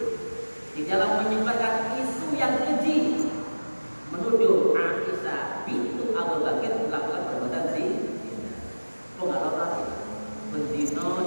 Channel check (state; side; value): inverted; both; correlation -1.00